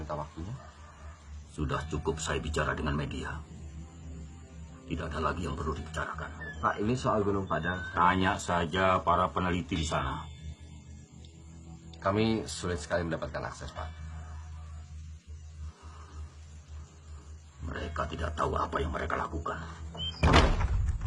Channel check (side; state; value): both; identical; correlation 1.00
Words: waktunya? Sudah cukup saya bicara dengan media. Tidak ada lagi yang perlu dibicarakan. Pak, ini soal Gunung Padang. Tanya saja para peneliti di sana. Kami sulit sekali mendapatkan akses, Pak. Mereka tidak tahu apa yang mereka lakukan.